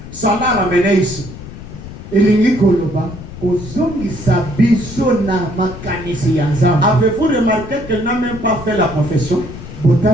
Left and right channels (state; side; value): noise; left; rumble, 13 dB below the sound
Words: ça l'a ramené ici. Avez-vous remarqué qu'elle n'a même pas fait la confession?